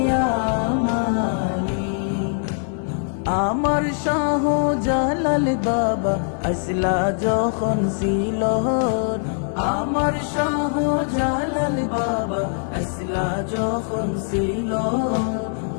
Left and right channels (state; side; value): silent; right; 64 dB below the other